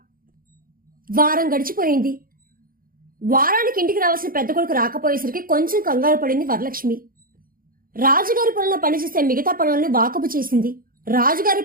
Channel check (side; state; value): left; late; 0.41 ms